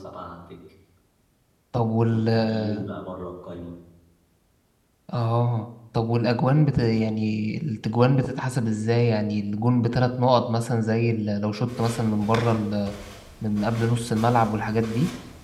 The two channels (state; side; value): identical; both; correlation 1.00